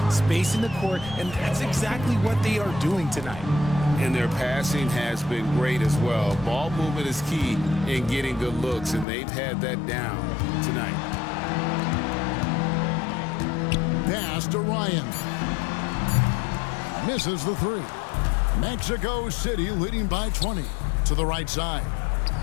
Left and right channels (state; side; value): drops out; right; at 9.1 s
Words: spacing the court, and that's exactly what they are doing tonight. And their passing has been great as well. Ball movement is key in getting good looks, and they've had that down tonight. Pass to Ryan. Misses the 3. Mexico City leading by 20 to the right side.